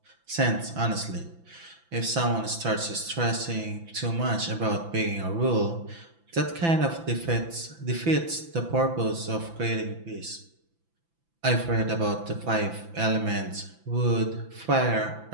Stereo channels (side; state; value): left; late; 6.0 ms